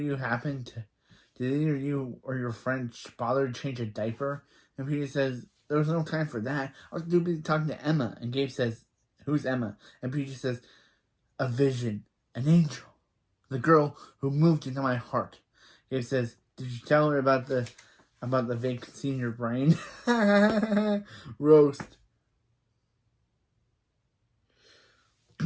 did either you or your friend bother to change a diaper? And PJ says, there was no time for that. I was too busy talking to Emma. And Gabe says, who's Emma? And PJ says, a vision, an angel, the girl who moved into my heart. Gabe says, did you tell her about the vacancy in your brain? Roast.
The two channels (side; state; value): both; identical; correlation 1.00